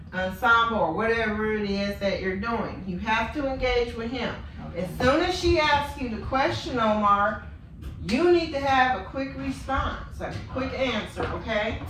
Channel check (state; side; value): identical; both; correlation 1.00